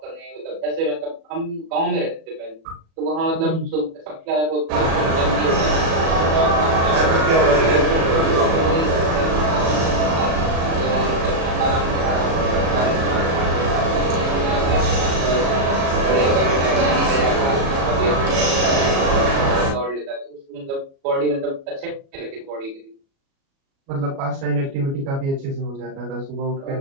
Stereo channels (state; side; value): late; left; 36 ms